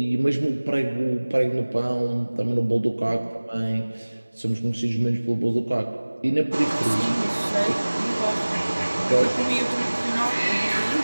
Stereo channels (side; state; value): both; inverted; correlation -1.00